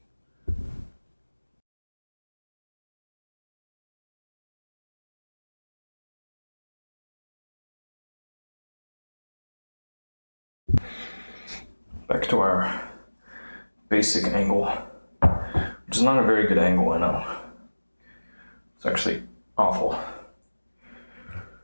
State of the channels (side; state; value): both; inverted; correlation -1.00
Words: Back to our basic angle, which is not a very good angle, I know. It's actually awful.